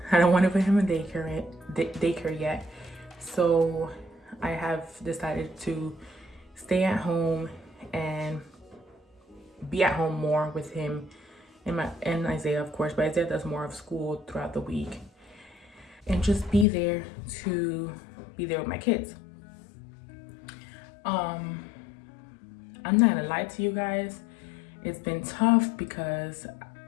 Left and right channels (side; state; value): right; drops out; at 16.7 s